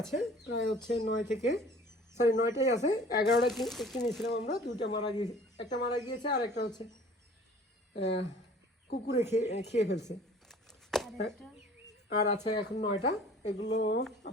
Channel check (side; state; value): both; normal; correlation 0.49